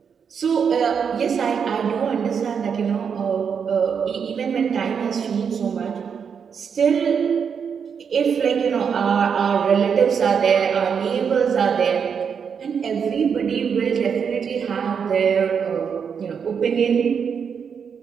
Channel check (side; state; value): left; quieter; 6.8 dB